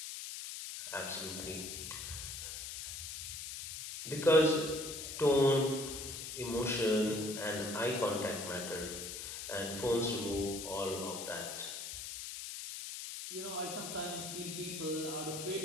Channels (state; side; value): noise; left; hiss, 7 dB below the sound